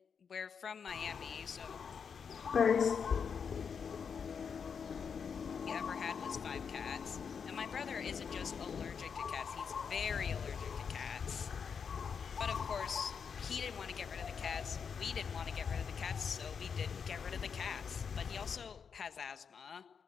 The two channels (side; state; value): right; quieter; 6.5 dB